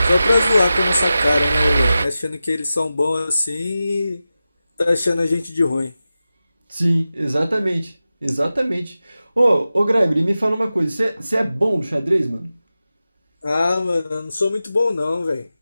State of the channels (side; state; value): both; inverted; correlation -0.93